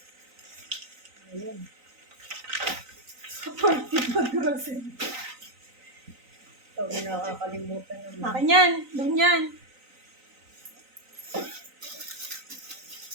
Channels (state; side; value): late; left; 3.9 ms